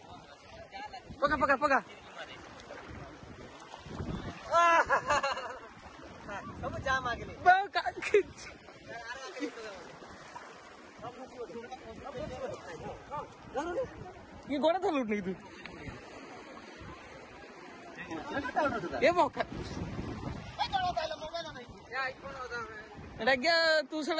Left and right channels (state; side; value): identical; both; correlation 1.00